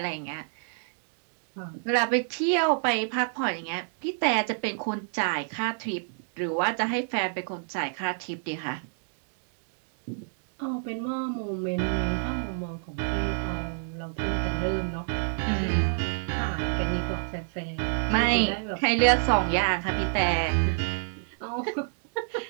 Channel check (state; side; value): silent; left; digital silence